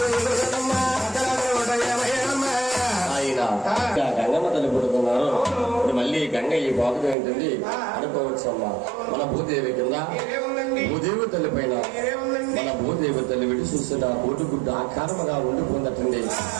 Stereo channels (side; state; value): left; drops out; at 7.2 s